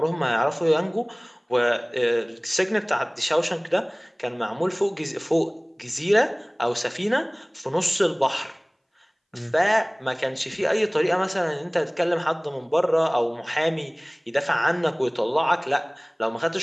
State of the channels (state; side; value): identical; both; correlation 1.00